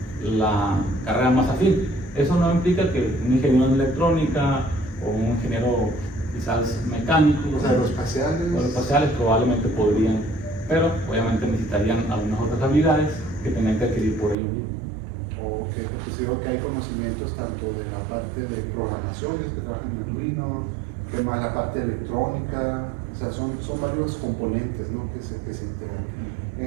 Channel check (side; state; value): left; drops out; at 14.4 s